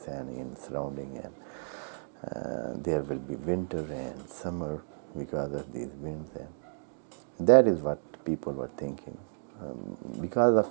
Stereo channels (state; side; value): silent; left; digital silence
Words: and in surrounding, and there will be winter and summer because of these winds. And that is what people were thinking. Because of